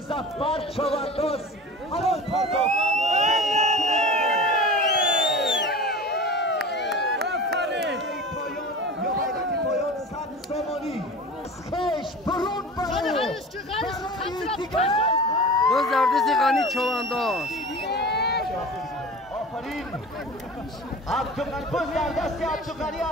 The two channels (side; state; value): both; normal; correlation 0.36